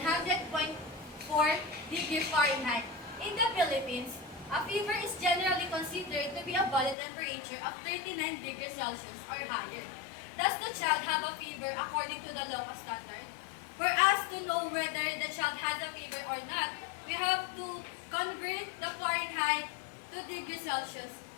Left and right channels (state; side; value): drops out; right; at 7.0 s